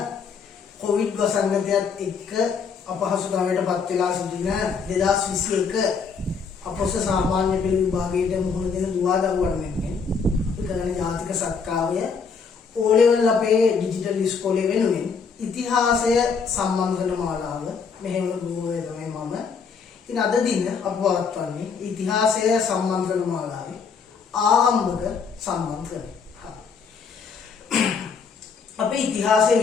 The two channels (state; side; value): quieter; right; 5.6 dB